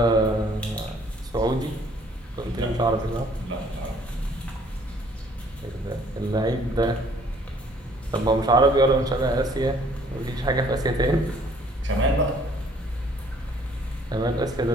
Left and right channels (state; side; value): normal; both; correlation 0.59